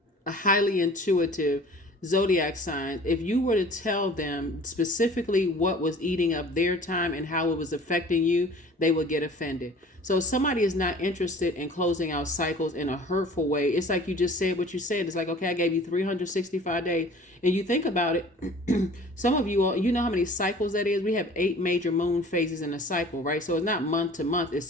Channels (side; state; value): both; normal; correlation 0.47